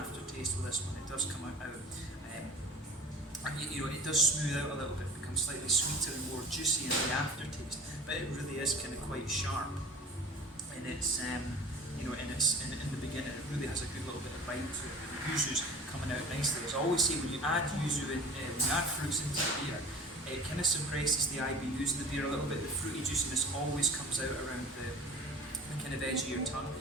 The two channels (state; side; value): normal; both; correlation 0.41